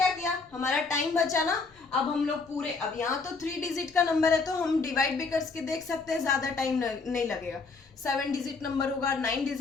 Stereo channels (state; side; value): quieter; right; 4.3 dB